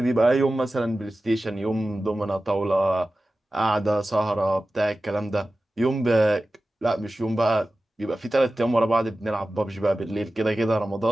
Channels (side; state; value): both; normal; correlation 0.95